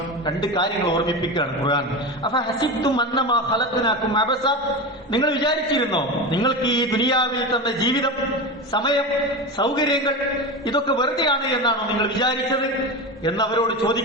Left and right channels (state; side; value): normal; both; correlation 0.23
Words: രണ്ട് കാര്യങ്ങൾ ഓർമ്മിപ്പിക്കുകയാണ് ഖുർആൻ. അഫഹസിബ്തും അന്നമാ ഖലഖനാകും അബസ, നിങ്ങൾ വിചാരിച്ചിരുന്നോ നിങ്ങൾക്ക് ഈ ദുനിയാവിൽ തന്ന ജീവിതം, സമയം, സൗകര്യങ്ങൾ ഇതൊക്കെ വെറുതെയാണ് എന്നാണോ നിങ്ങൾ വിചാരിച്ചത് എന്നവരോട്